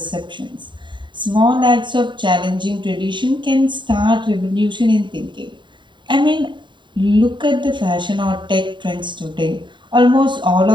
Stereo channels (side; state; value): left; late; 0.23 ms